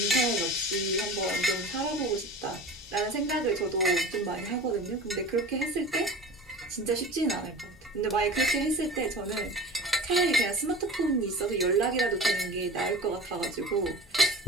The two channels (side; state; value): both; normal; correlation 0.37